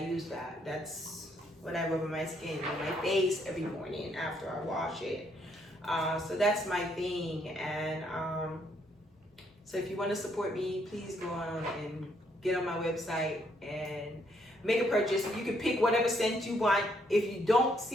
use that. That's what I rub on my skin, on my face every morning after I wash it. So that's my thing. And so if you want to support me, please go on and get on my website and make a purchase. You can pick whatever scent you want. If you don't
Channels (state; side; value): normal; both; correlation 0.71